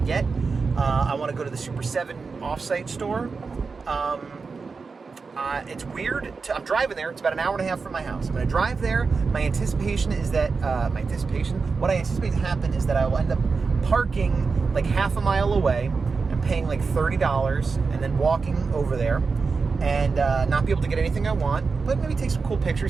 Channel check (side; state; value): left; quieter; 4.7 dB